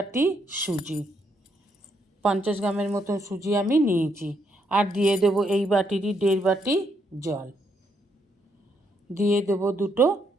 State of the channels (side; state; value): both; normal; correlation 0.75